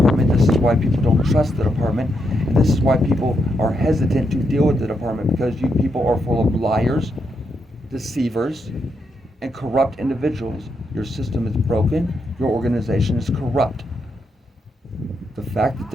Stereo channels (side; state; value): both; normal; correlation 0.81